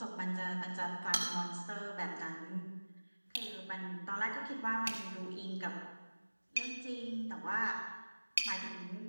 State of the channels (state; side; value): inverted; both; correlation -1.00